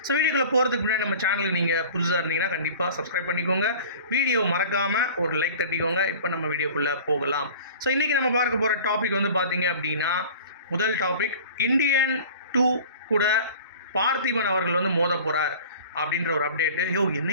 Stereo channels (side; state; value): both; inverted; correlation -0.42